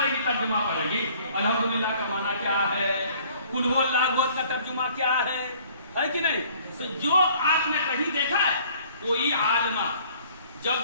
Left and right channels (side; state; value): both; inverted; correlation -0.56